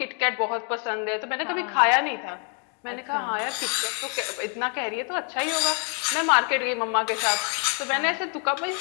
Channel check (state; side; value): quieter; right; 39.4 dB